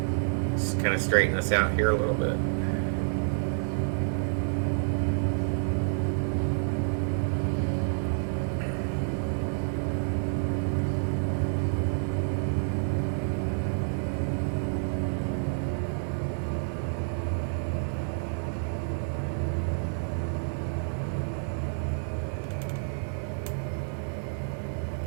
Just kind of straighten this out here a little bit.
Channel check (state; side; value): silent; left; 57 dB below the other